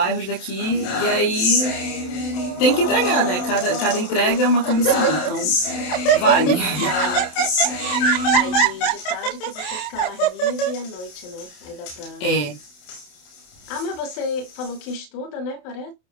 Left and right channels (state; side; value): late; right; 27 ms